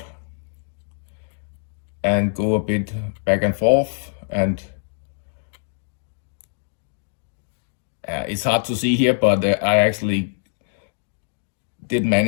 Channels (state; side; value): silent; right; digital silence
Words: and go a bit back and forth, and it's hard to see here, but I actually did